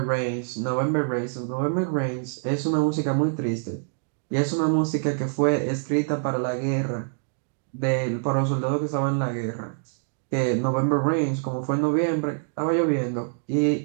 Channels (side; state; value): left; silent; digital silence